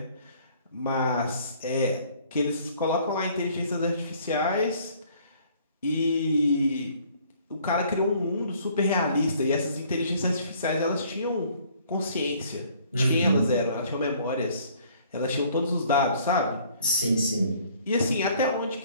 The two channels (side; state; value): both; inverted; correlation -0.58